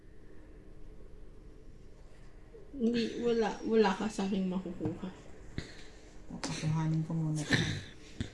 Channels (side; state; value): both; identical; correlation 1.00